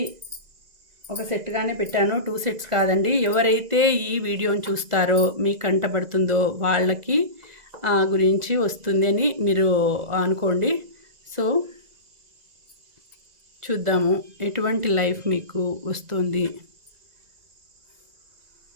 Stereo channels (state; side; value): late; left; 2.0 ms